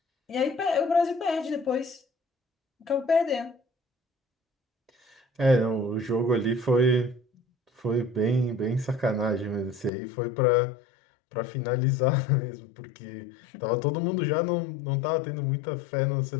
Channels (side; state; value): right; drops out; at 9.9 s